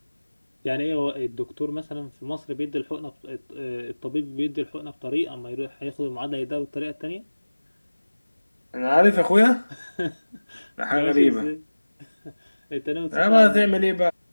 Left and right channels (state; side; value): inverted; both; correlation -1.00